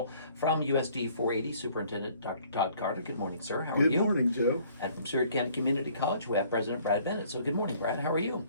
From USD 480, Superintendent Dr. Todd Carter. Good morning, sir. How are you? Good morning, Joe. And from Seward County Community College, we have President Brad Bennett. So good morning, Brad. How are you?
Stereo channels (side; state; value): both; inverted; correlation -0.58